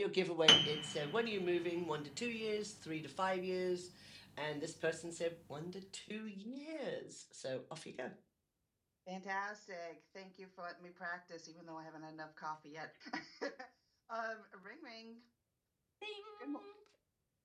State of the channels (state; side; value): identical; both; correlation 1.00